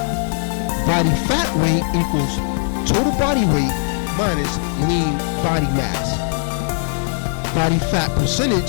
Body fat weight equals total body weight minus lean body mass. Body fat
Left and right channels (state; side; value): silent; right; digital silence